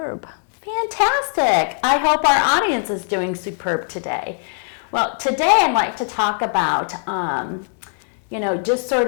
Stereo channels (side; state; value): right; silent; digital silence